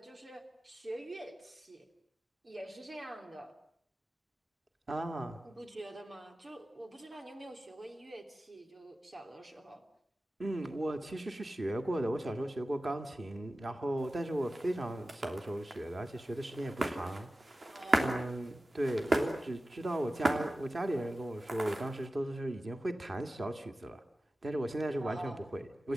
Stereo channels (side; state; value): both; normal; correlation 0.95